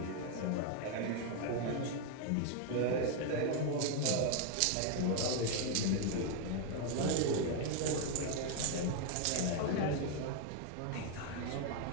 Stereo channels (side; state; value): both; different; correlation 0.00